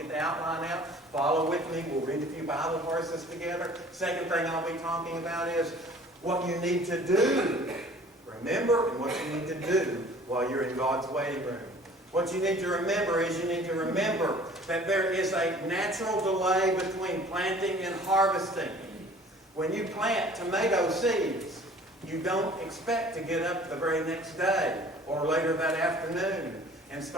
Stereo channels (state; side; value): normal; both; correlation 0.49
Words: get the outline out. Follow with me. We'll read a few Bible verses together. Second thing I'll be talking about is what you need to do. Remember, and what you need to do while you're in God's waiting room. What you need to remember is you need to remember that there is a natural delay between planting and harvesting. When you plant tomato seeds, you don't expect to get up the very next day or later that afternoon and